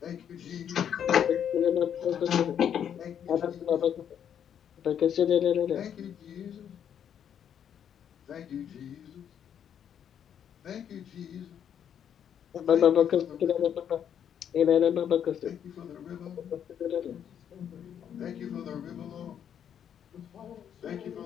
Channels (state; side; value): quieter; right; 8.9 dB